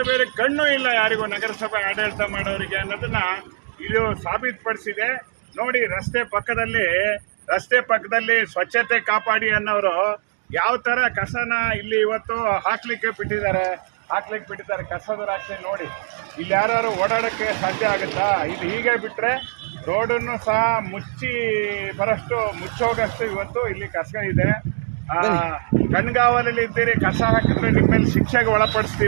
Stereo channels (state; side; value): silent; left; 64 dB below the other